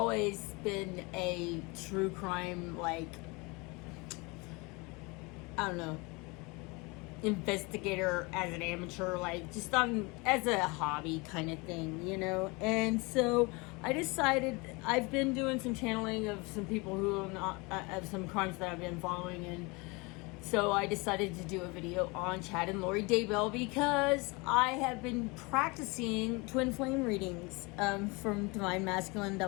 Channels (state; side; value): quieter; right; 27.0 dB